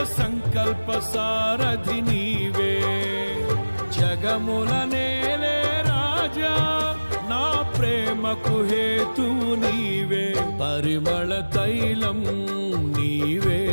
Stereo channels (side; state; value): both; inverted; correlation -1.00